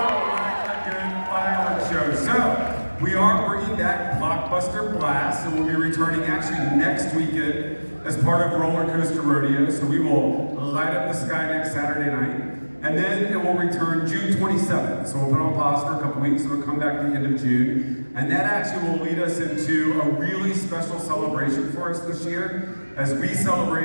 A good fireworks show. So, we are bringing back Blockbuster Blast, and we'll be returning actually next weekend as part of Roller Coaster Rodeo. So we will light up the sky next Saturday night. And then it will return June 27th. So we'll put it on pause for a couple weeks. So it'll come back at the end of June. And that actually will lead us into a really special celebration for us this year as we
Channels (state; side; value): inverted; both; correlation -1.00